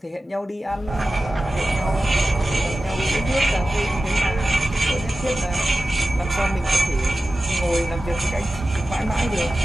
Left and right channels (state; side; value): normal; both; correlation 0.95